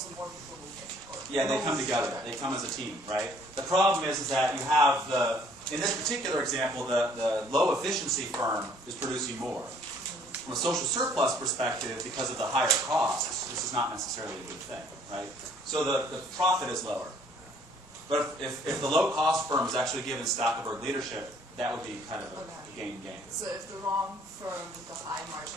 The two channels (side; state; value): both; normal; correlation 0.60